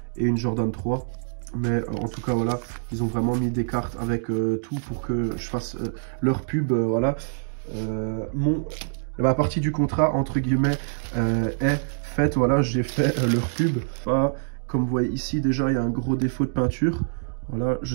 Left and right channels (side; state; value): left; silent; digital silence